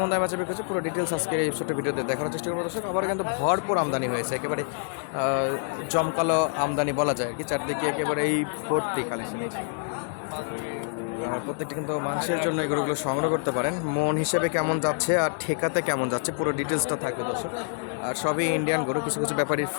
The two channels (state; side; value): silent; right; 60 dB below the other